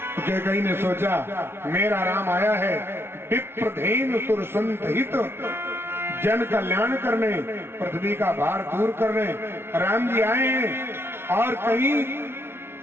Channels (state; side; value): late; left; 0.12 ms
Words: तो कैकेयी ने सोचा मेरा राम आया है विप्रधेन सुर संत हित, जन कल्याण करने, पृथ्वी का भार दूर करने राम जी आए हैं। और कहीं